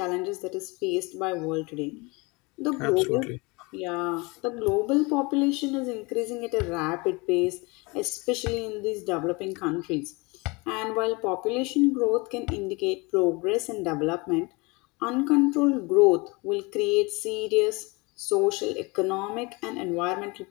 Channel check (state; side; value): quieter; right; 26.6 dB